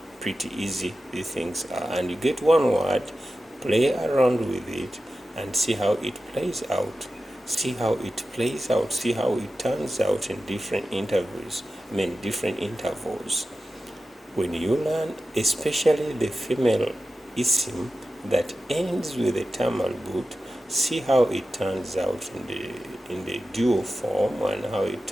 pretty easy these things are. And you get one word, play around with it, and see how it plays out. See how it plays out. See how it turns out in different intervals. Different intervals. When you learn, especially the female isim that ends with a term al-but, see how it turns out in the dual form and how it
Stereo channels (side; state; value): both; normal; correlation 0.93